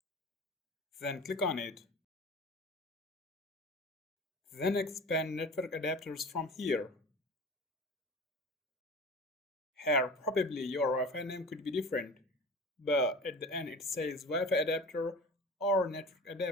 Then click on it. Then expand network adapters from here. Here, probably your Wi-Fi name could be different, but at the end it says Wi-Fi adapter or network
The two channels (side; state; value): both; normal; correlation 0.37